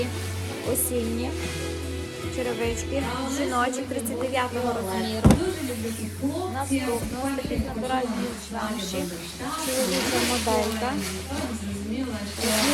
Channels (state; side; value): identical; both; correlation 1.00